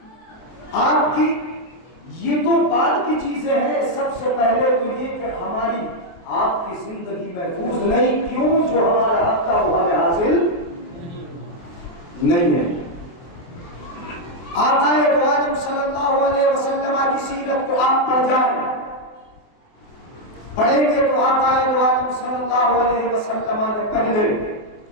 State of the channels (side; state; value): right; late; 24 ms